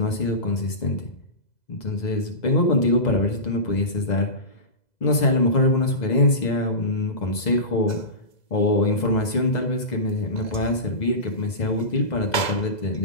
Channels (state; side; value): late; right; 2.0 ms